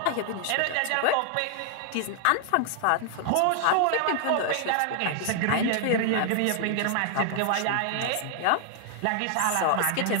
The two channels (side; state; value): both; different; correlation 0.00